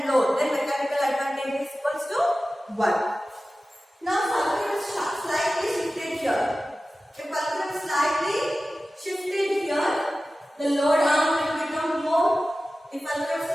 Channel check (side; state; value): both; normal; correlation 0.95